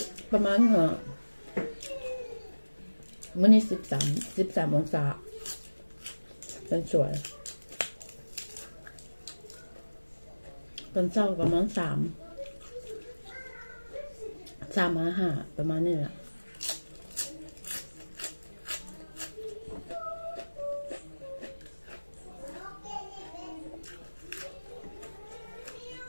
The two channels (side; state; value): both; inverted; correlation -1.00